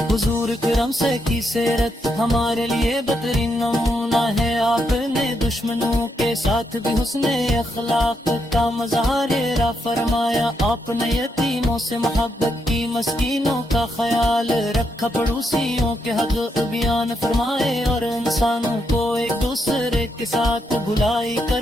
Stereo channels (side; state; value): both; normal; correlation 0.80